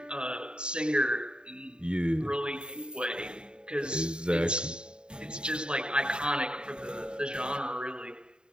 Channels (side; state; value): left; late; 0.049 ms